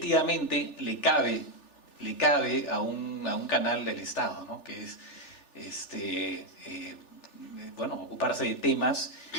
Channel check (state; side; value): late; right; 3.4 ms